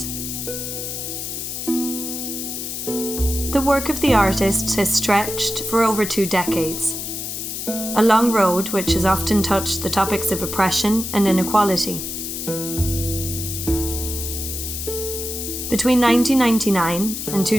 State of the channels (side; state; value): left; noise; hiss, 5 dB below the sound